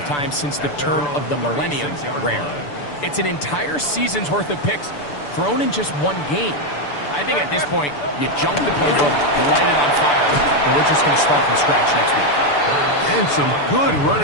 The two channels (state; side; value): late; right; 6.9 ms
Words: times since the turn of the millennium rare. It's an entire season's worth of picks thrown in just one game. I think at this point, you junk the playbook, light it on fire, and we're just going to start from scratch next week. And some good